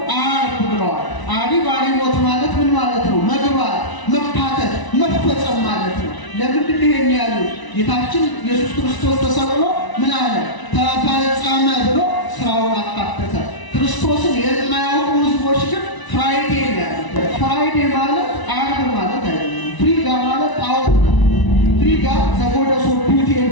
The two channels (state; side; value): late; right; 1.0 ms